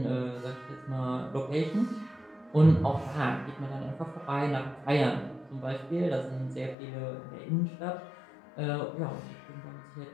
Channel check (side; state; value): right; drops out; at 6.8 s